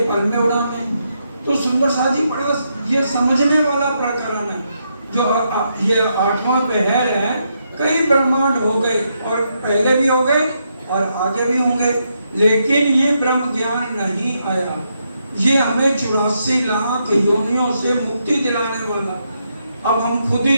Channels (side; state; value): both; inverted; correlation -0.80